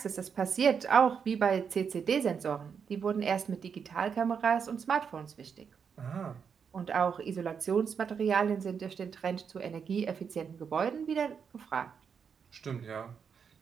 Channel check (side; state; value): left; quieter; 6.7 dB